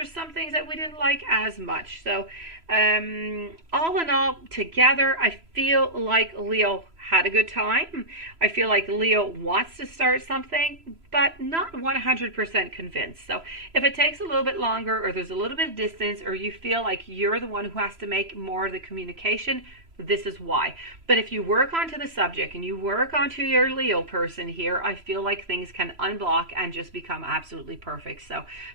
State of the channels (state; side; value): late; left; 3.0 ms